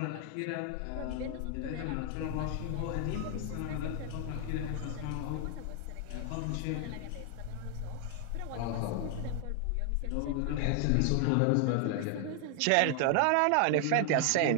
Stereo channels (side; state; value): both; different; correlation 0.00